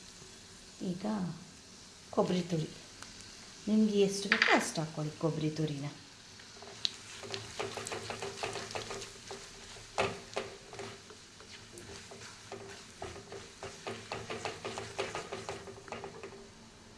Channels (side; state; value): both; identical; correlation 1.00